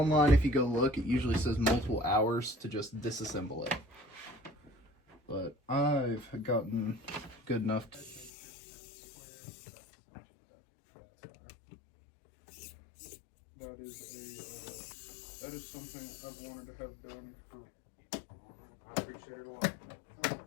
if you go look, it usually says multiple hours to just disassemble it. But I've gotten good enough to... That is something I've wanted to have done for... I appreciate it a lot.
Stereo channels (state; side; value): drops out; right; at 8.3 s